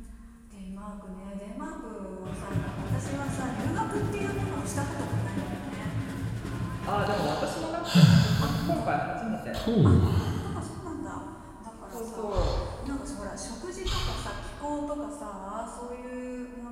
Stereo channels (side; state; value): both; identical; correlation 1.00